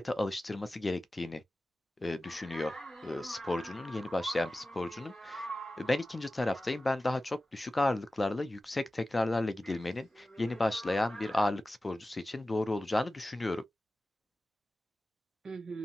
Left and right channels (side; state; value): both; normal; correlation 0.95